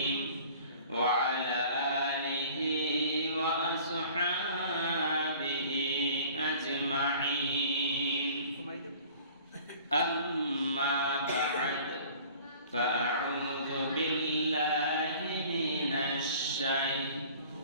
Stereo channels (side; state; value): both; inverted; correlation -0.48